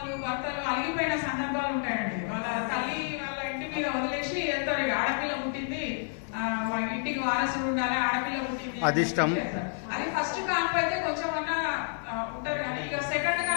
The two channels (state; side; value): silent; right; digital silence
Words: భర్తలు అలిగిపోయిన సందర్భాలు ఉంటాయండి. వాళ్ళ తల్లి వాళ్ళ ఇంటి మీద వదిలేసి వెళ్తారు. ఆడపిల్ల పుట్టింది, వాళ్ళ ఇంటికి వారసుడు ఉండాలి, ఆడపిల్ల పుట్టింది అదిష్టం. అది ఫస్ట్ కాన్పు అయితే కొంచెం అన్నా ఉంటారు. కానీ ఇక సెకండ్